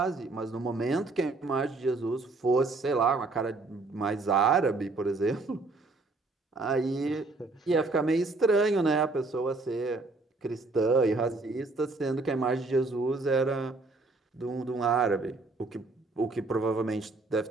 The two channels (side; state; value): left; quieter; 3.4 dB